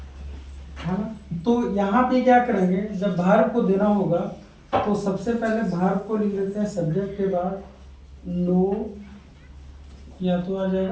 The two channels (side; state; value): both; identical; correlation 1.00